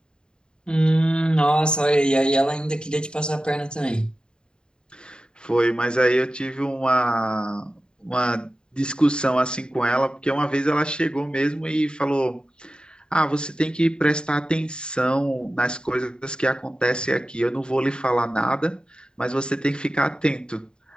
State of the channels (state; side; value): late; right; 0.049 ms